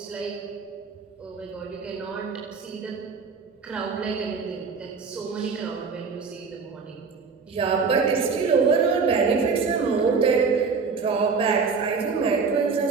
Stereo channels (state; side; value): quieter; left; 5.1 dB